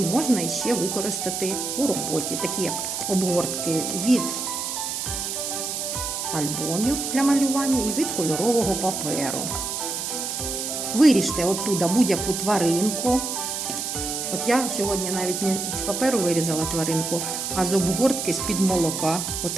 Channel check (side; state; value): right; noise; hiss, 3 dB below the sound